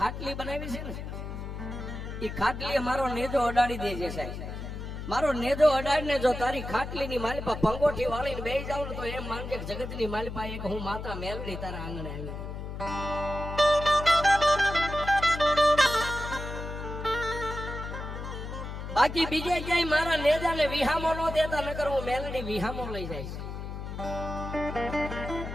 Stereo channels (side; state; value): left; noise; hum, 7 dB below the sound